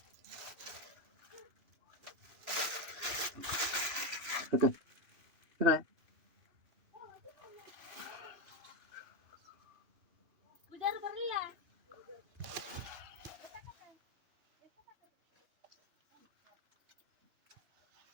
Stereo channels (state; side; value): late; left; 2.0 ms